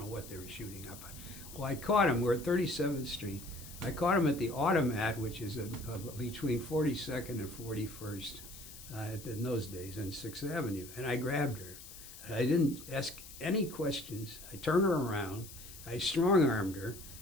what they were shooting up on. Well, I caught them. We're at 37th Street. I caught them at the Automat, which is between 42nd and 41st in those days, on 6th Avenue. And I grabbed her. And I didn't ask any questions. I turned her around. I strong-armed her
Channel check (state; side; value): noise; left; hiss, 15 dB below the sound